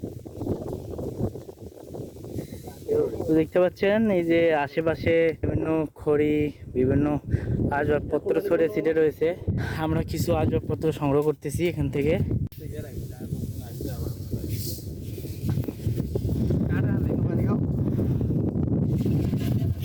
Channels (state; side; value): identical; both; correlation 1.00